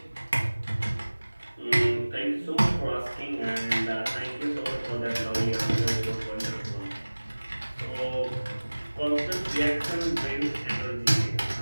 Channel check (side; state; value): both; inverted; correlation -1.00